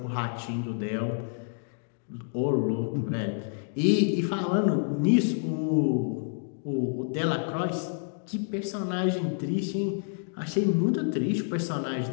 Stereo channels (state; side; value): silent; right; digital silence